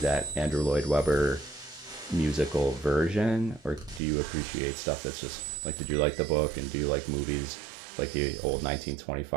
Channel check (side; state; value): left; drops out; at 4.0 s